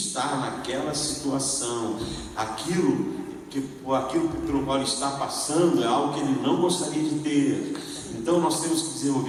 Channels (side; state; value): both; identical; correlation 1.00